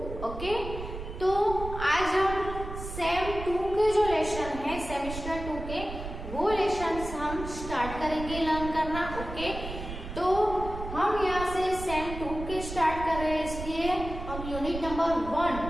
Okay, तो आज हम same 2 के जो लेसन है सेमेस्टर 2 के वो लेसन्स हम स्टार्ट करेंगे लर्न करना. ओके, तो हम यहाँ से सेम 2 के स्टार्ट कर रहे हैं, इसलिए हम unit number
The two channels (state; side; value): noise; right; rumble, 9 dB below the sound